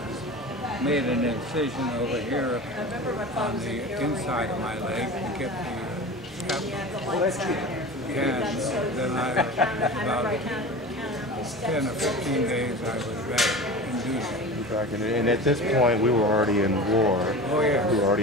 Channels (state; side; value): normal; both; correlation 0.33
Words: made an incision over here on the inside of my leg to get the strap. And then about 10 or 15 days I was back in duty. And at this point, we were already in war. Oh, yeah. We were